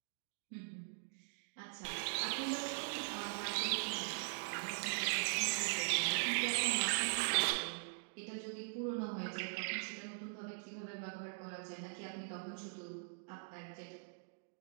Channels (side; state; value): left; silent; digital silence